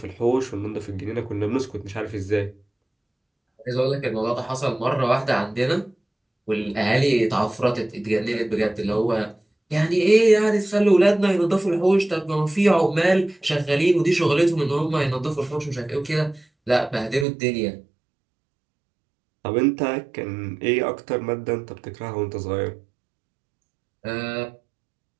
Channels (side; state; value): left; drops out; at 17.2 s